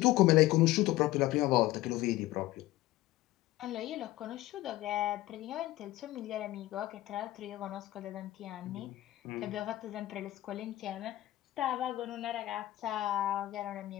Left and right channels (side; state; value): right; quieter; 16.7 dB